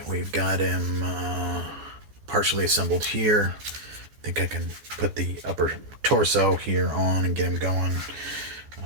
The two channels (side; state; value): left; late; 14 ms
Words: We've got him partially assembled here. I think I can put the upper torso here on and get him going.